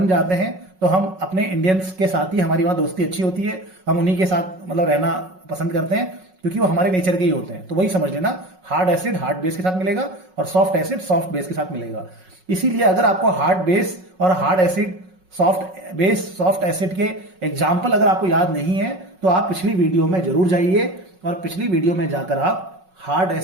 जाते हैं तो हम अपने इंडियंस के साथ ही, हमारी वहां दोस्ती अच्छी होती है, हम उन्हीं के साथ मतलब रहना पसंद करते हैं क्योंकि वो हमारे नेचर के ही होते हैं। तो वही समझ लेना, हार्ड एसिड हार्ड बेस के साथ मिलेगा और सॉफ्ट एसिड सॉफ्ट बेस के साथ मिलेगा। इसीलिए अगर आपको हार्ड बेस और hard acid, soft base soft acid के एग्जाम्पल अगर आपको याद नहीं है तो आप पिछली वीडियो में जरूर जाइए और पिछली वीडियो में जाकर आप हार्ड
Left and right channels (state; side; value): late; left; 5.4 ms